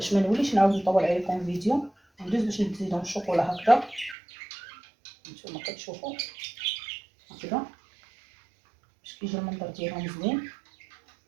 ما نوليش نعاود نطول عليكم الفيديو. ندوز باش نزيدهم الشوكولا هكذا. نتوما كتشوفوا هكذا باش كيجي المنظر ديالهم زوين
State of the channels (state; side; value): drops out; left; at 4.2 s